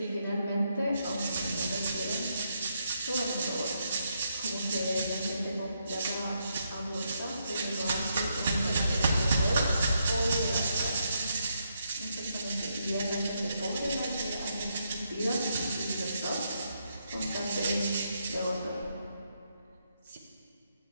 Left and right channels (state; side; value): inverted; both; correlation -0.79